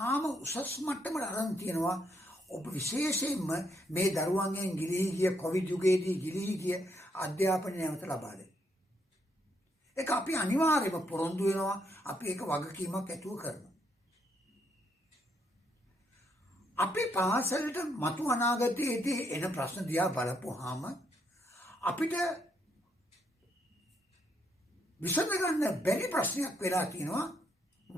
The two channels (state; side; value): normal; both; correlation 0.75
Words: උසස් මට්ටමට අරන් තියෙනවා. ඔබ විශේෂයෙන්ම මේ දරුවන්ගෙන් ගිලිහි ගිය කොවිඩ් යුගයේදී ගිලිහි ගිය අධ්‍යාපනය නැවත ලබා දෙන්න. ඒක අපි අනිවාර්යයෙන්ම පොරොන්දු වෙනවා. අපි ඒක වගකීමක් ඇතුව කරනවා. අපි පාසලට මතු අනාගතයේදී එන ප්‍රශ්න දිහා බලපුවාම අපිට විසඳගන්න බැරි ප්‍රශ්නයක් වෙලා තියෙනවා